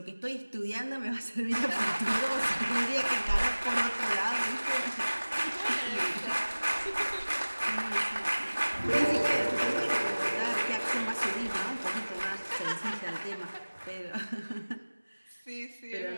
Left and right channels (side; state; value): both; inverted; correlation -1.00